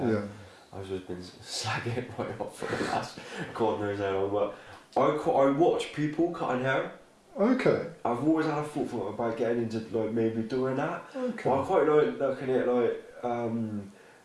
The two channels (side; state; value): both; identical; correlation 1.00